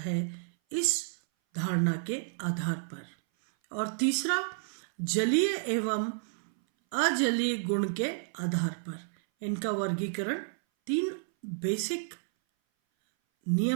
इस धारणा के आधार पर। और तीसरा जलीय एवं अजलीय गुण के आधार पर इनका वर्गीकरण 3 बेसिक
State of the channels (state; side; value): silent; left; 57 dB below the other